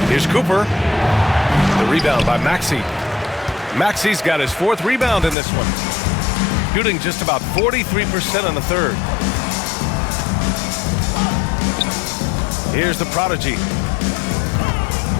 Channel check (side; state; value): right; drops out; at 5.4 s